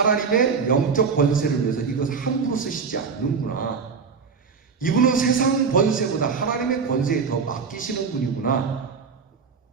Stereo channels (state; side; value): quieter; left; 5.5 dB